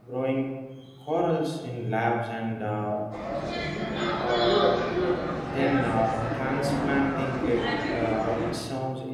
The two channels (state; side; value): identical; both; correlation 1.00